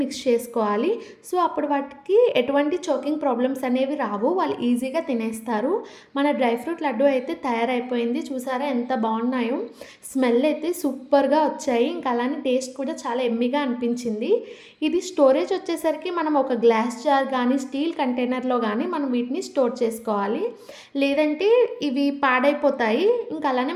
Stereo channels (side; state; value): both; identical; correlation 1.00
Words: మిక్స్ చేసుకోవాలి. సో, అప్పుడు వాటికి ఎటువంటి చోకింగ్ ప్రాబ్లమ్స్ అనేవి రావు. వాళ్ళు ఈజీగా తినేస్తారు. మన డ్రై ఫ్రూట్ లడ్డు అయితే తయారైపోయింది. చూసారా ఎంత బాగున్నాయో. స్మెల్ అయితే సూపర్‌గా వచ్చాయి. ఇంకా అలానే టేస్ట్ కూడా చాలా యమ్మీగా అనిపించింది. ఇది స్టోరేజ్ వచ్చేసరికి మనం ఒక గ్లాస్ జార్ కానీ స్టీల్ కంటైనర్లో కానీ మనం వీటిని స్టోర్ చేసుకోవాలి. లేదంటే ఇవి పాడైపోతాయి. ఇంకా అలానే